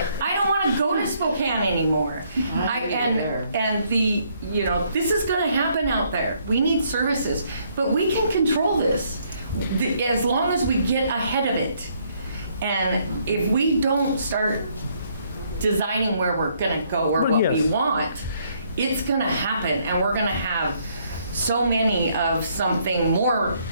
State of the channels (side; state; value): both; inverted; correlation -0.69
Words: I don't want to go to Spokane anymore. This is going to happen out there. We need services, but we can control this as long as we get ahead of it. And if we don't start designing where we're going to go or what we want, it's going to happen, and we're going to have so many of something more